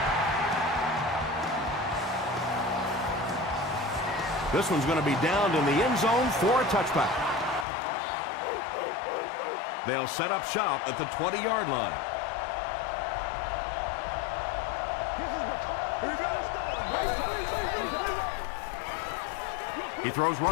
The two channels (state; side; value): drops out; right; at 7.7 s